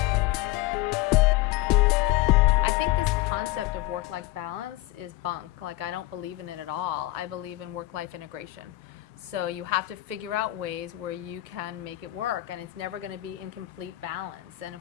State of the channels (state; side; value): quieter; right; 18.0 dB